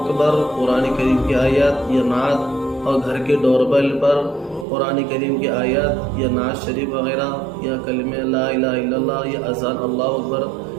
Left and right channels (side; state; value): left; drops out; at 4.7 s